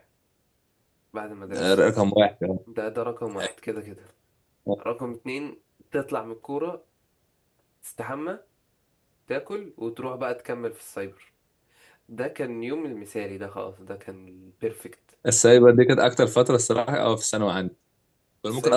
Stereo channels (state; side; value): identical; both; correlation 1.00